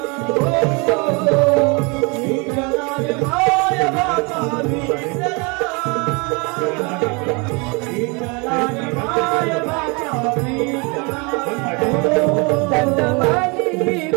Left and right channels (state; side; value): quieter; left; 30.3 dB